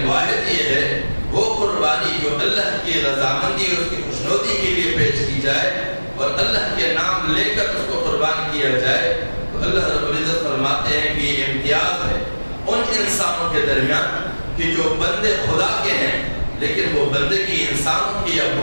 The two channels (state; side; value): inverted; both; correlation -1.00